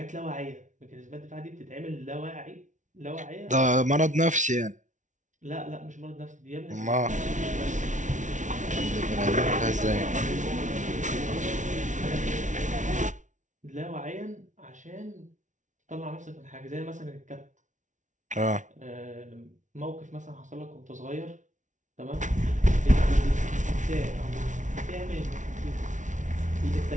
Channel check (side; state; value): left; late; 0.36 ms